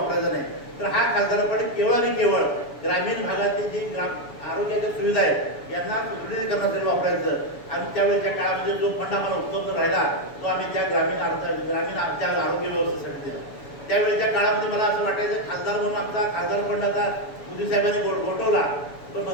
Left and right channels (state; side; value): late; right; 7.0 ms